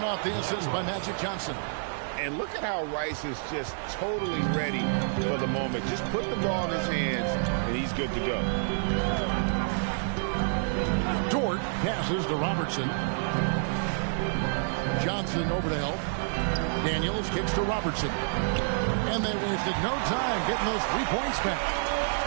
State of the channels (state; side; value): silent; left; digital silence